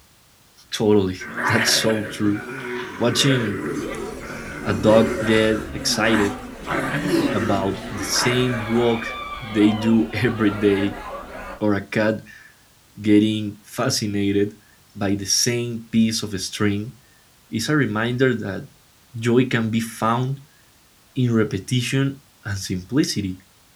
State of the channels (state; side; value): identical; both; correlation 1.00